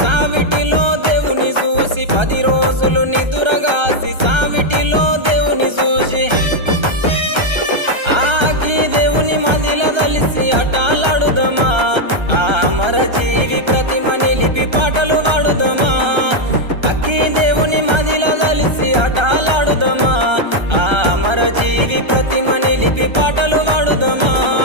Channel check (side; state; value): left; late; 1.3 ms